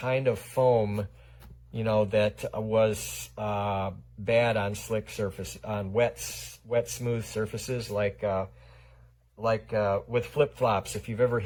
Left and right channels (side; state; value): both; identical; correlation 1.00